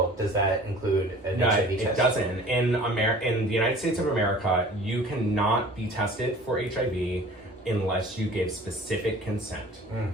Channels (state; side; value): normal; both; correlation 0.45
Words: does that include an HIV test? It doesn't. In the United States of America, you cannot be tested for HIV unless you give specific consent.